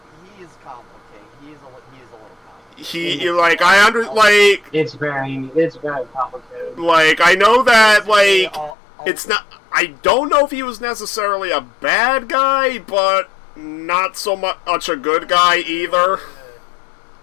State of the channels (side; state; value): right; drops out; at 8.7 s